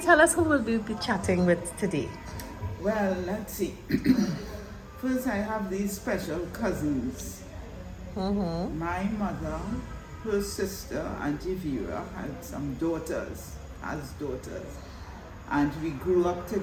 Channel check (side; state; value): both; identical; correlation 1.00